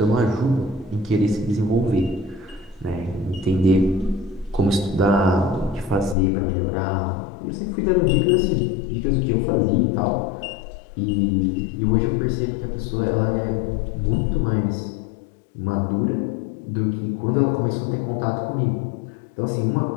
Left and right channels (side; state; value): right; drops out; at 6.2 s